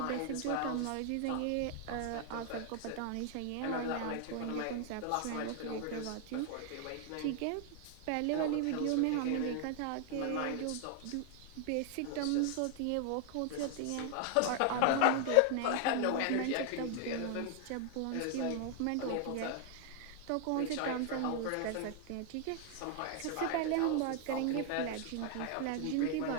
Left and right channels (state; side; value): different; both; correlation 0.00